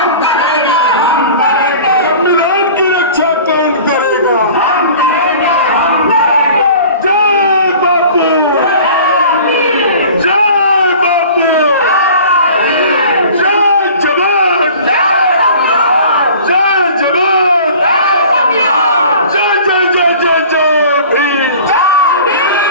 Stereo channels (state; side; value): inverted; both; correlation -0.44